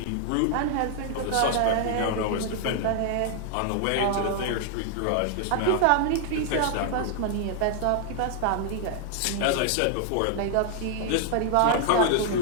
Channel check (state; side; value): different; both; correlation 0.00